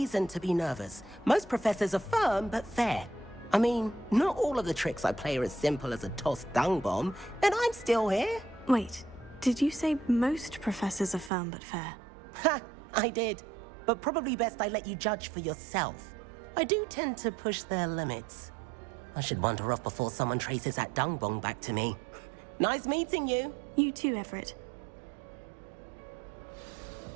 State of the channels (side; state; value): left; drops out; at 11.3 s